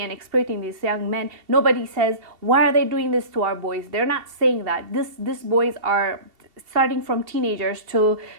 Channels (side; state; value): left; late; 2.7 ms